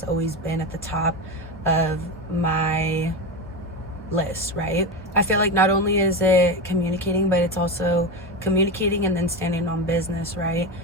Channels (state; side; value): normal; both; correlation 0.19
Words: always been at the top of my list, right? I feel like not only is it communicating, but it's also communicating and then standing on business, right?